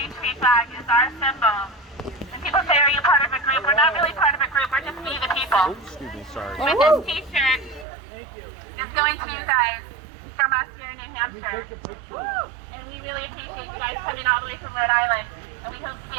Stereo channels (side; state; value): left; drops out; at 7.9 s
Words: tree flag is our symbol. And people say, are you part of a group? We're not really part of a group. We're just we the people. Excuse me, sorry. With this t-shirt, it's going to you guys from us here in New Hampshire. And we really appreciate you guys coming all the way from Rhode Island. And we hope to